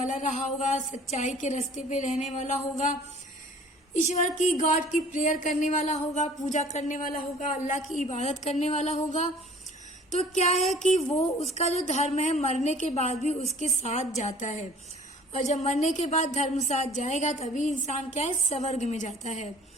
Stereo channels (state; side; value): normal; both; correlation 0.50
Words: रहा होगा, सच्चाई के रास्ते पे रहने वाला होगा, ईश्वर की, गॉड की प्रेयर करने वाला होगा, पूजा करने वाला होगा, अल्लाह की इबादत करने वाला होगा, तो क्या है कि वो, उसका जो धर्म है मरने के बाद भी उसके साथ जाता है। और जब मरने के बाद धर्म साथ जाएगा तभी इंसान क्या है, स्वर्ग में जाता है।